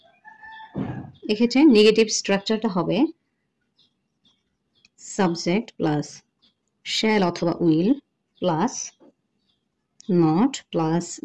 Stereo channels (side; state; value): both; identical; correlation 1.00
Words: এক্ষেত্রে নেগেটিভ স্ট্রাকচারটা হবে সাবজেক্ট প্লাস শ্যাল অথবা will plus not plus